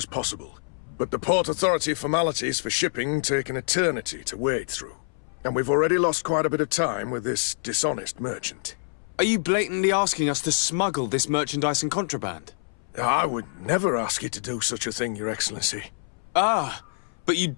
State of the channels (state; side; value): silent; right; 61 dB below the other